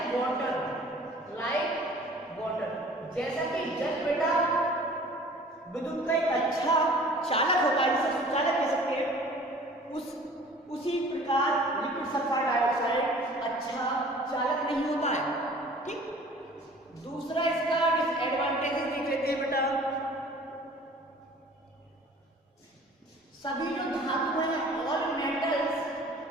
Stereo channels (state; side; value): normal; both; correlation 0.48